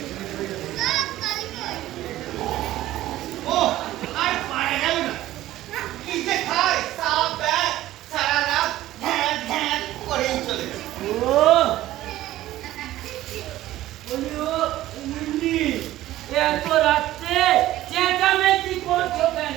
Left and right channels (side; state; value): left; quieter; 14.9 dB